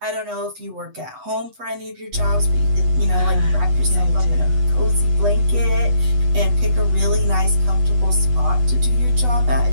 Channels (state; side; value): late; left; 8.1 ms